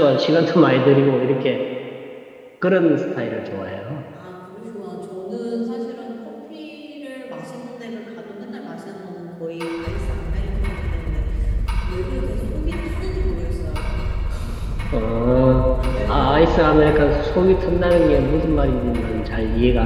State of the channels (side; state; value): both; identical; correlation 1.00